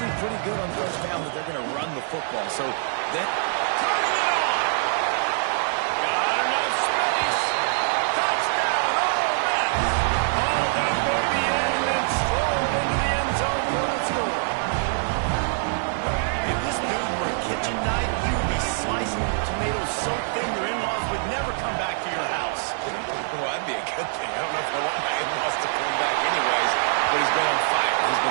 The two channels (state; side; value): silent; left; 59 dB below the other